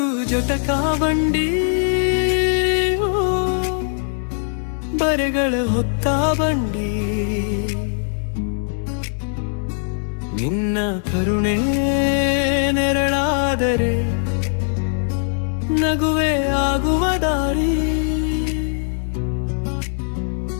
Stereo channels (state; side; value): silent; right; digital silence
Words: ಜಟಕ ಬಂಡಿ, ಬರೆಗಳ ಹೊತ್ತ ಬಂಡಿ. ನಿನ್ನ ಕರುಣೆ ನೆರಳಾದರೆ ನಗುವೆ ಆಗುವ ದಾರಿ.